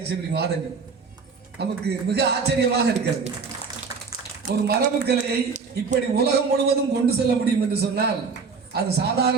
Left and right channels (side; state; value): left; quieter; 5.1 dB